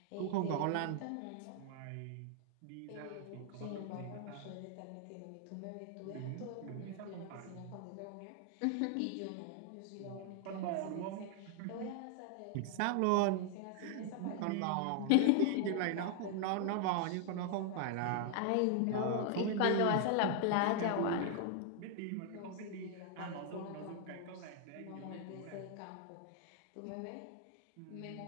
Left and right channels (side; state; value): both; different; correlation 0.00